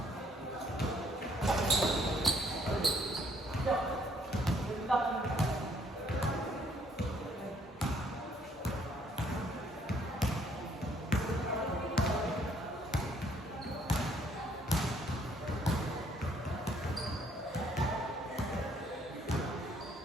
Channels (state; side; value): normal; both; correlation 0.64